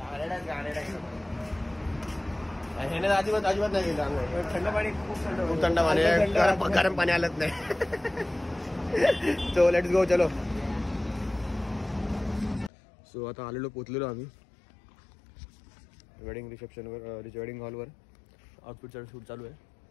अजिबात नाही गेलं आंघोळ. थंड पाणी खूप थंड पाणी गरम पाणी आलंच नाही. सो लेट्स गो चलो. सो आता आलेलो पोचलेलो आम्ही वेडिंग रिसेप्शनवर वेडिंग हॉलवर. आउटफिटचा शूट चालू आहे.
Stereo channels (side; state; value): right; drops out; at 12.7 s